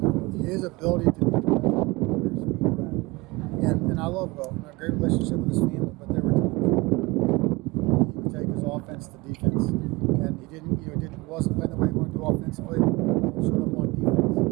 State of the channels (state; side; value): quieter; left; 23.3 dB